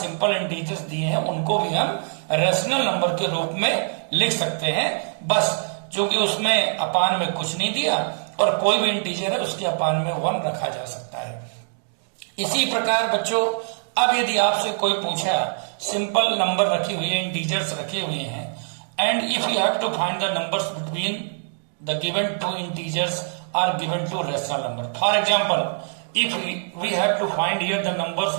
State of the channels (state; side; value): silent; left; digital silence